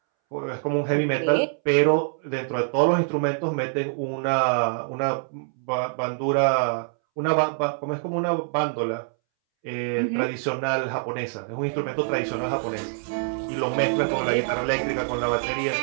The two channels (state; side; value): silent; left; 62 dB below the other